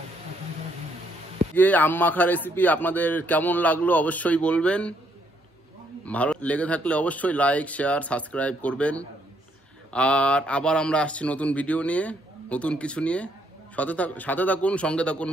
আম মাখা রেসিপি আপনাদের কেমন লাগলো অবশ্যই বলবেন। ভালো লেগে থাকলে অবশ্যই লাইক, শেয়ার, সাবস্ক্রাইব করবেন। আর আবার আমরা আসছি নতুন ভিডিও নিয়ে, নতুন কিছু নিয়ে। সাথে থাকুন, সঙ্গে থাকুন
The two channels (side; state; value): both; normal; correlation 0.71